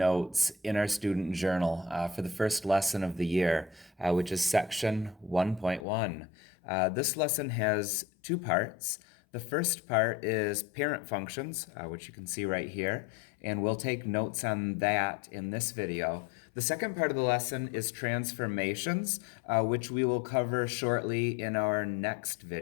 in our student journal for the first lesson of the year, which is section 1.1. This lesson has two parts. The first part is parent functions, which you can see right here, and we'll take notes on that in this video. The second part of the lesson is transformations, which we will cover shortly in our next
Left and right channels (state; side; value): drops out; right; at 5.9 s